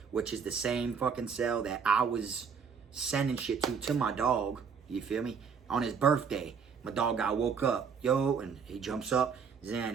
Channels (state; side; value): quieter; left; 6.2 dB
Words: which is the same fucking cell that I was sending shit to my dog. You feel me? On his birthday. My dog got woke up. Yo, and he jumps up.